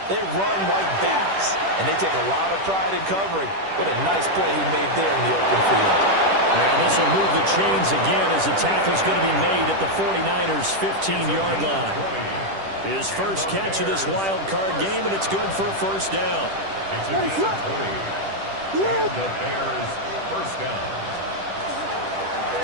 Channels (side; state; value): left; late; 10 ms